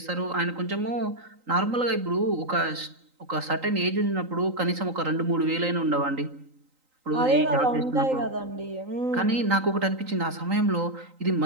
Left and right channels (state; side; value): late; left; 3.9 ms